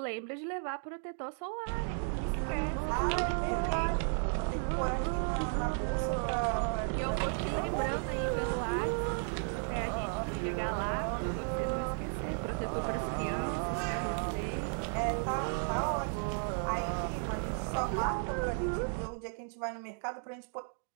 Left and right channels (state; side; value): silent; left; 55 dB below the other